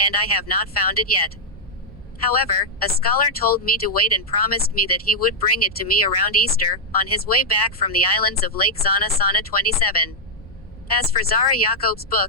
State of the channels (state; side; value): noise; left; rumble, 23 dB below the sound